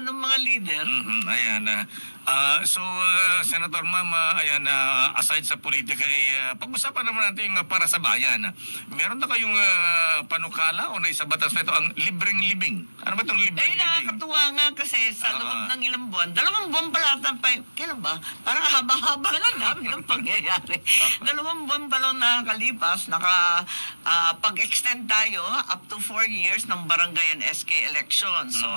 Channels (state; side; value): inverted; both; correlation -1.00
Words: ng mga leader? Ayan. Senator Ma'am, aside sa politika, pag-usapan naman natin yung para sa bayan. Meron na kayong panukala o naisabatas na ito ang libreng libing? Ano ba itong libreng libing? Nakakatuwa nga kasi sa loob ng ilang buwan, 2 buwan pala kailan ba? Parang haba-haba na namin ang pangyayari. 2 buwan pa lang nakakalipas, pag-extend tayo up to 4 years ng barangay and SK election. So,